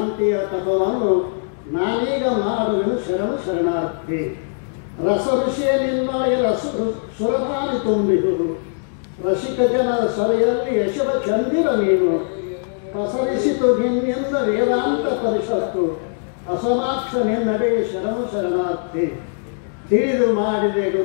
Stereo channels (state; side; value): silent; right; digital silence